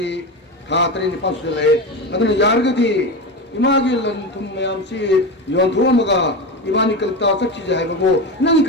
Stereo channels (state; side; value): normal; both; correlation 0.21